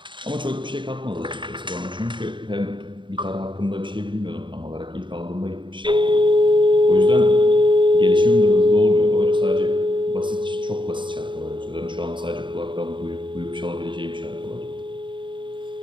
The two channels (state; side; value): late; left; 0.23 ms